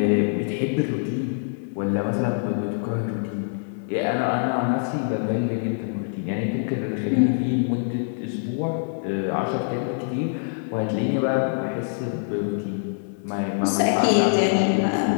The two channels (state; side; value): silent; right; 62 dB below the other